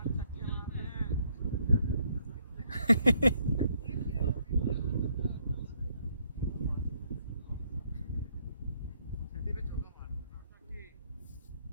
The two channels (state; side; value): inverted; both; correlation -0.70